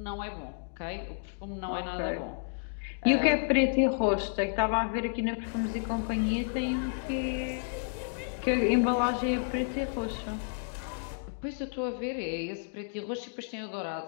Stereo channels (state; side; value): silent; right; digital silence